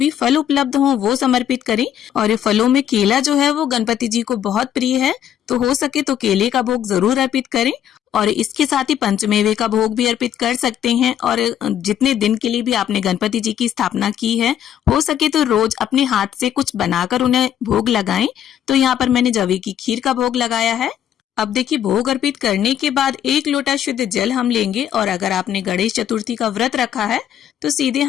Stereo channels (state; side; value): quieter; right; 10.1 dB